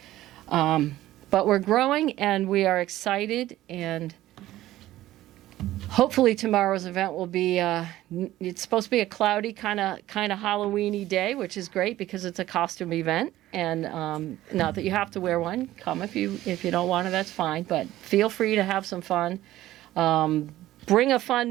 But we're growing, and we are excited, and hopefully tomorrow's event will be, it's supposed to be a cloudy kind of Halloween-y day, which is great because it's a costume event. And not that you have to wear one. Come if you don't want to, that's fine. But feel free to have some fun. Bring a fun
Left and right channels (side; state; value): left; quieter; 15.0 dB